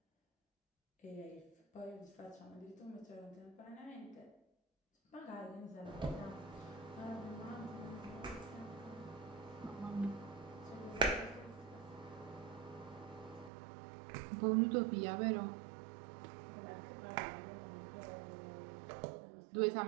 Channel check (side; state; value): left; drops out; at 13.5 s